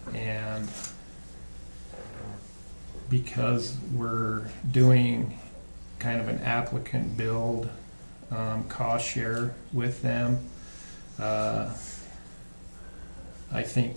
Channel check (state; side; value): inverted; both; correlation -1.00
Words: and because we're doing kind of an applicant build cost share with them, I think